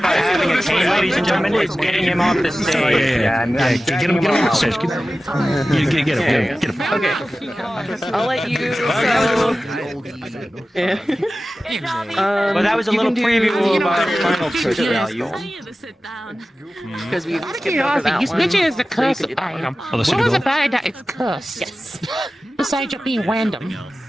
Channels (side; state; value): both; normal; correlation 0.95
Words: having a chain ladies and gentlemen, it's getting him off the stage. Get him off the stage. Get him. Okay. I'll let you. Well, that was a little preview of our final picture value. Because we skipped over that This one. picture is the So you curse could do that. item. Oh, What was about that? It's cursed. Yes. Besides it being random.